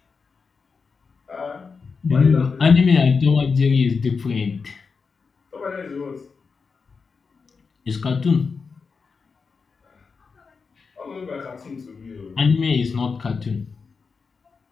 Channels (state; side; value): quieter; right; 5.0 dB